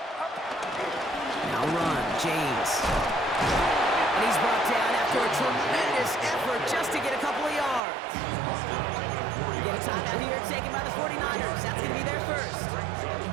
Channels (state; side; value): drops out; left; at 7.8 s